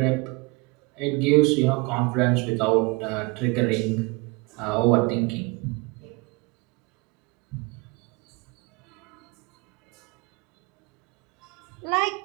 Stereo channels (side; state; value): left; quieter; 27.0 dB